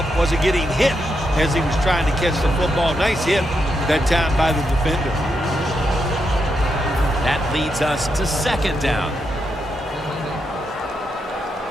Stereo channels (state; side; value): normal; both; correlation 0.82